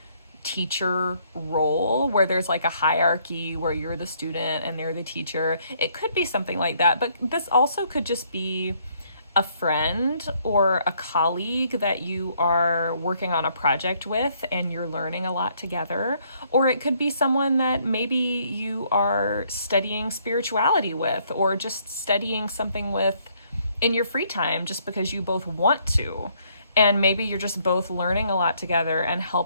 teacher role where there's like a hierarchy where you're the student and they're the teacher. It could be something like that, but this also could just be a friend or a colleague that you are working on a project with and you're learning a lot together. Or it could be someone that maybe you are studying spirituality with, or just studying something with in your free time just because you both want to. And maybe you're just both learning a lot together and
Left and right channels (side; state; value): both; inverted; correlation -0.68